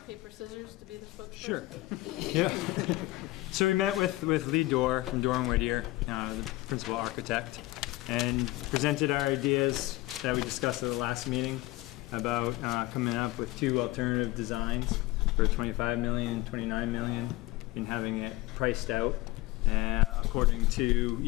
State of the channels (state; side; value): quieter; right; 19.5 dB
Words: paper, scissors to be the spokesperson. Sure. Yeah. So we met with Lee Dorr from Dorr & Whittier, the principal architect, and presented our ideas that we discussed at the last meeting about coming up with 2 alternative designs for $25 million, $29 million, and having it priced out according